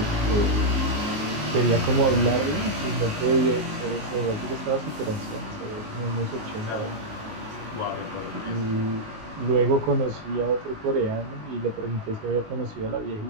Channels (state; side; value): late; left; 19 ms